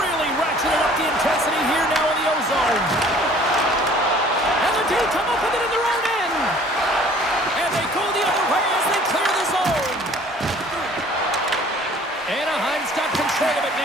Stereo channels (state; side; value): normal; both; correlation 0.52